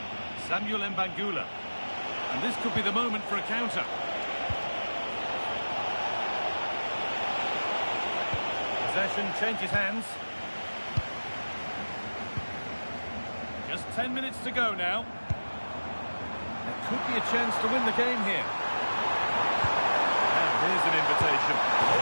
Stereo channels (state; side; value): inverted; both; correlation -1.00